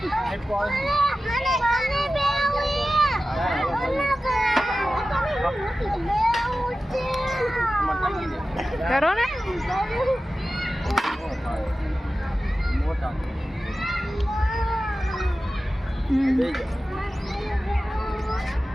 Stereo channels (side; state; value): both; normal; correlation 0.95